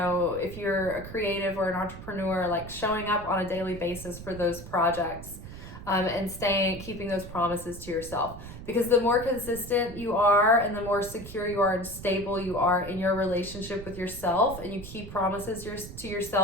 if you're a creative or an entrepreneur, like showing up on a daily basis for those projects. And keeping those promises to yourself, because the more consistent you are and the more secure you are and stable you are in your relationship with yourself, and you keep promises to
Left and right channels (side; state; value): right; noise; rumble, 13 dB below the sound